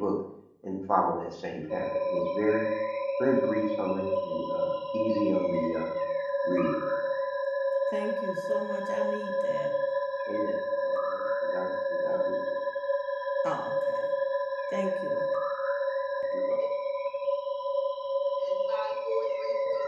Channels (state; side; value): identical; both; correlation 1.00